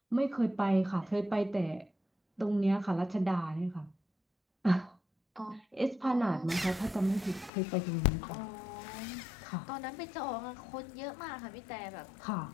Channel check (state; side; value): drops out; right; at 7.5 s